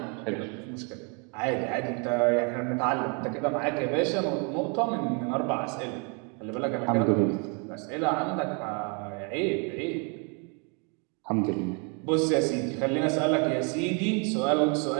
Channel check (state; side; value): quieter; left; 35.8 dB